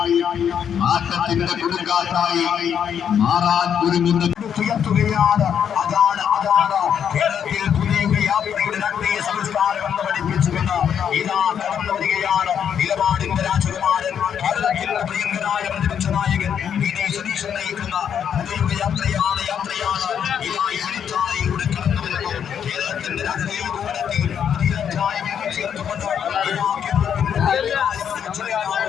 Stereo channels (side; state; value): right; quieter; 8.3 dB